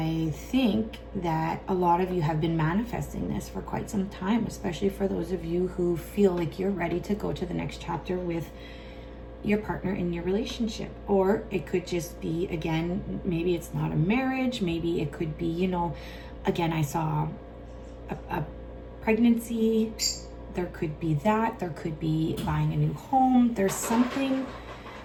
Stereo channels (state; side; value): identical; both; correlation 1.00